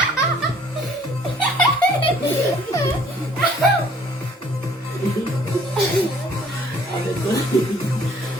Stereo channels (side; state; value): both; normal; correlation 0.58